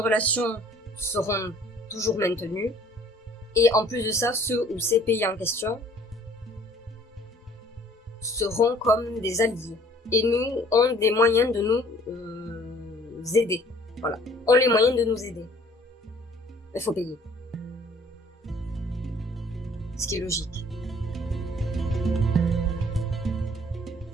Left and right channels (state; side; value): normal; both; correlation 0.56